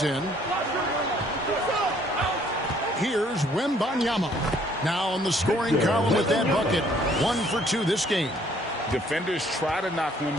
in. Here's Wembanyama. Now on the scoring column with that bucket. 1 for 2 this game. Defenders try to knock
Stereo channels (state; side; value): normal; both; correlation 0.62